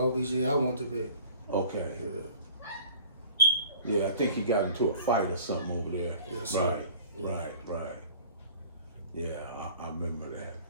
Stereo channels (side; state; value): both; inverted; correlation -0.48